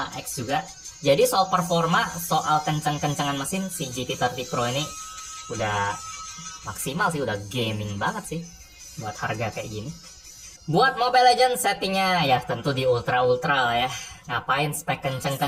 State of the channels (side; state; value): both; identical; correlation 1.00